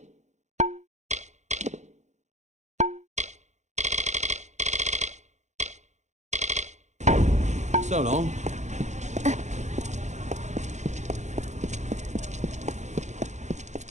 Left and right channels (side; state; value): left; late; 0.34 ms